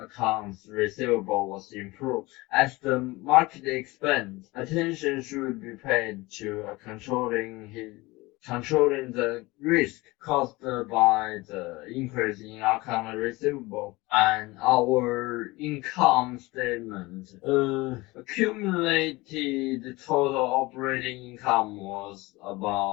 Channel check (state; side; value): quieter; right; 21.9 dB